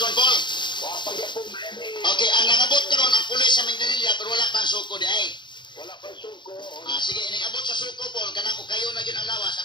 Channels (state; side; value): late; right; 0.22 ms